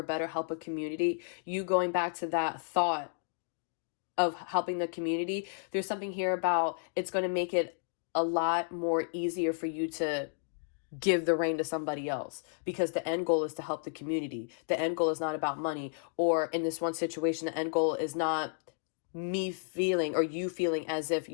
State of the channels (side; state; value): right; silent; digital silence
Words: better help a community. You going back to that thought of helping the community. There's something here about it's going to make it a lot more easier for you to give the reign to somebody else, because the end goal is to help the community. The end goal is not about money, or in this one situation, the end goal is not me feeling or you feeling as if